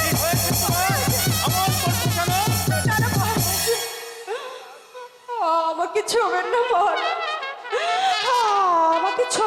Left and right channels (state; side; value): identical; both; correlation 1.00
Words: আমাকে ছোবেন না মহারাজ, আমাকে